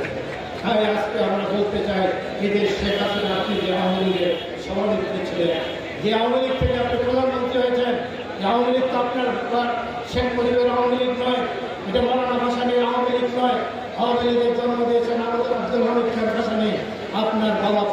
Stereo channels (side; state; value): both; identical; correlation 1.00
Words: তাই আজকে আমরা বলতে চাই, এদের শেখ হাসিনা আপনি যে আওয়ামী লীগের সভানেত্রী ছিলেন, যে আওয়ামী লীগ থেকে আপনি প্রধানমন্ত্রী হয়েছেন, যে আওয়ামী লীগ তো আপনার শেখ মুজিবের আওয়ামী লীগ নয়, এটা মৌলানা ভাসানীর আওয়ামী লীগ নয়। আওয়ামী লীগের জন্ম দিয়েছেন আব্দুল হামিদ খান ভাসানী, আপনার বাবা